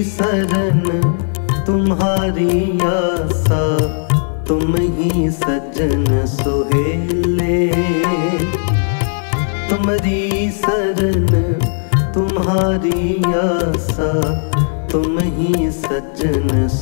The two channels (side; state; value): right; silent; 58 dB below the other